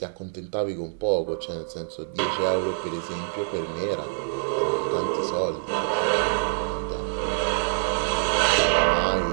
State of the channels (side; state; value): left; silent; digital silence